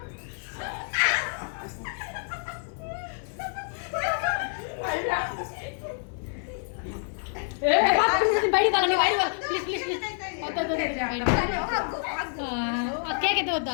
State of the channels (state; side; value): silent; right; 60 dB below the other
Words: బయట ప్లీజ్ ప్లీజ్ ప్లీజ్. కేక్ ఎత్త వద్దా?